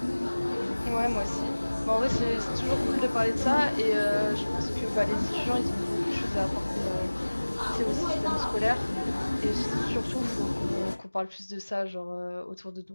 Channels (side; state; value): both; inverted; correlation -1.00